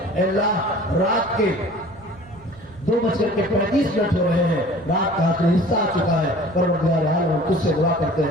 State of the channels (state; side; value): noise; right; rumble, 22 dB below the sound